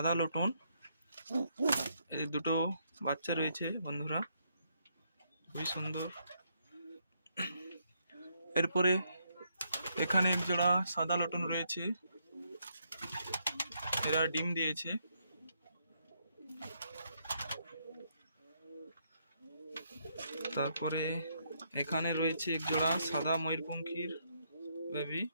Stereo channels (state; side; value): inverted; both; correlation -0.75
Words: লটন, এদের দুটো বাচ্চা রয়েছে বন্ধুরা, খুবই সুন্দর। এরপরে এখানে একজোড়া সাদা লটন রয়েছে, এরা ডিম দিয়েছে। তারপরে এখানে রয়েছে একজোড়া সাদা ময়ূরপঙ্খীর বেবি,